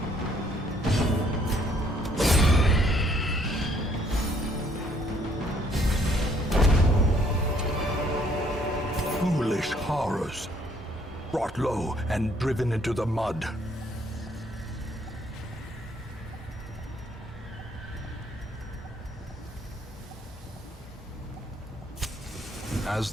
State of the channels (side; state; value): both; normal; correlation 0.65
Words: Foolish horrors. Brought low and driven into the mud. As